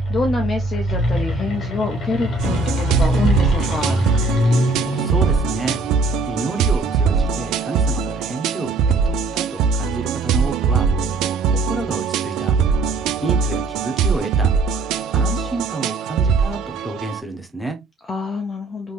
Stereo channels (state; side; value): quieter; left; 3.3 dB